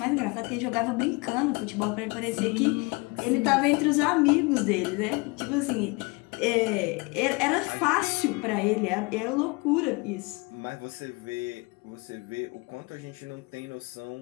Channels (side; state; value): right; quieter; 27.5 dB